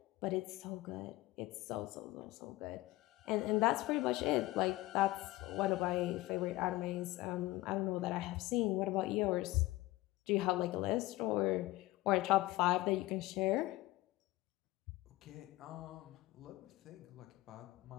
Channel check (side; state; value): right; quieter; 18.6 dB